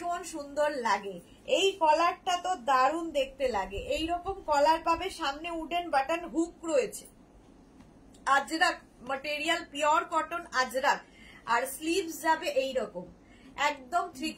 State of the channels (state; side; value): identical; both; correlation 1.00